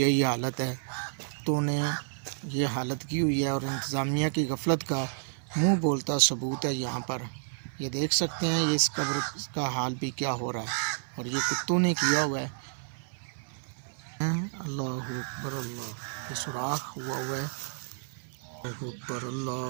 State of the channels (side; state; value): left; silent; 58 dB below the other